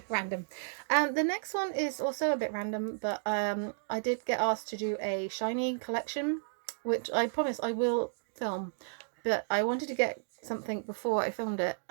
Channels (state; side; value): silent; left; digital silence